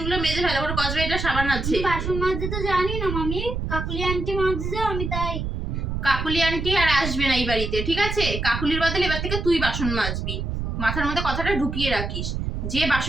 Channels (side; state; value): right; noise; rumble, 3 dB below the sound